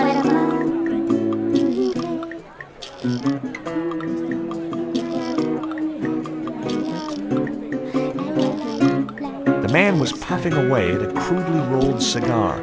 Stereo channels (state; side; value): identical; both; correlation 1.00